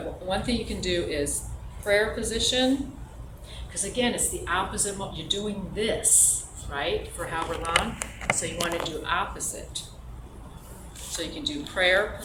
one thing you can do is prayer position, because again, it's the opposite, you're doing this, right, for however long, so you want to do opposite. So you can do prayer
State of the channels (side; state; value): both; identical; correlation 1.00